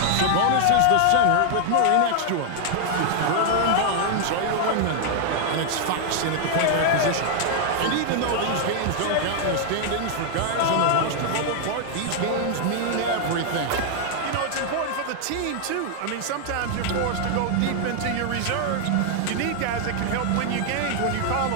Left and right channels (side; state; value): both; different; correlation 0.00